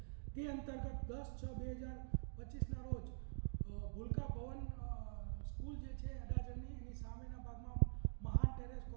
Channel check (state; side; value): silent; left; digital silence